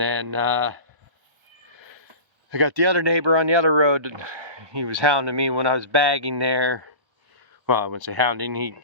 I got the other neighbor on the other road. He was hounding me when I was bagging there. Well, I wouldn't say hounding. He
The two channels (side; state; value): left; late; 1.3 ms